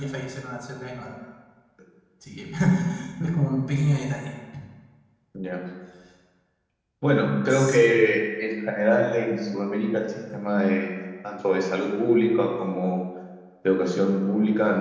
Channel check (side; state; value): both; identical; correlation 1.00